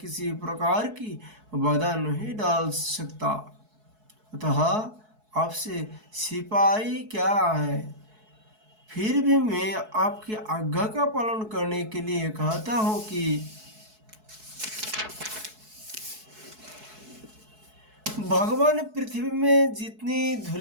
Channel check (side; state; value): left; late; 4.6 ms